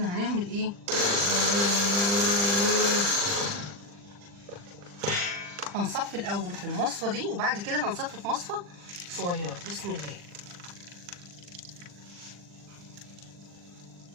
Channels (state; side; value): late; left; 40 ms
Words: هنعمل ايه، هنصفي الاول في المصفى دي، وبعد كده هنصفي في مصفى صغيره. بسم الله.